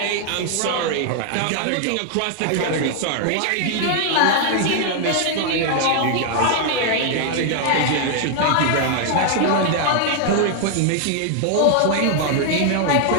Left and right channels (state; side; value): different; both; correlation 0.00